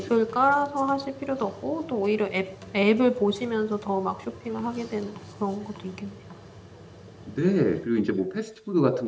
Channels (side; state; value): both; identical; correlation 1.00